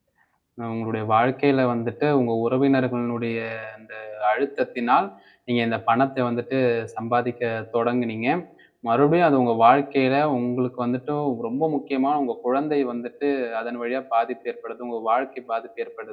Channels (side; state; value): both; identical; correlation 1.00